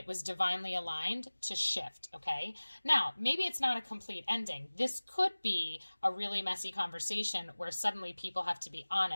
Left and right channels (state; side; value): inverted; both; correlation -1.00